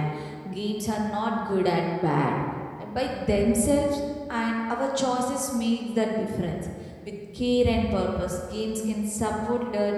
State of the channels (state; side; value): identical; both; correlation 1.00